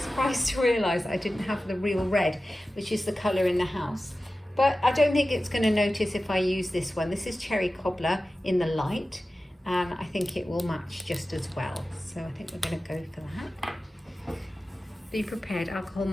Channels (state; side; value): normal; both; correlation 0.95